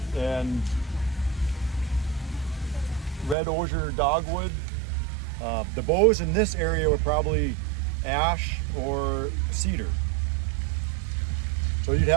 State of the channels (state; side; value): drops out; left; at 3.4 s